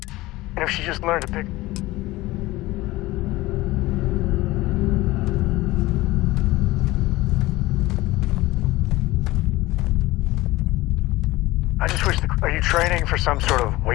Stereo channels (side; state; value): right; quieter; 18.9 dB